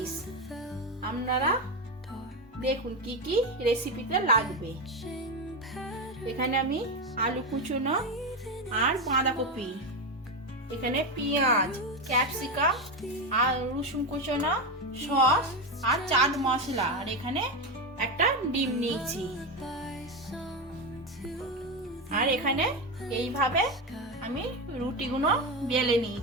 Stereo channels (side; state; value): both; normal; correlation 0.13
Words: আপনারা দেখুন কি কি রেসিপিতে লাগবে। এখানে আমি আলু কুচনো আর বাঁধাকপি, এখানে পেঁয়াজ, ক্যাপসিকাম আর রসুন কুচনো, সস আর চাট মশলা, আর এখানে একটা ডিম নিয়েছি। আর এখানে এইভাবে আমি রুটিগুলো বেলে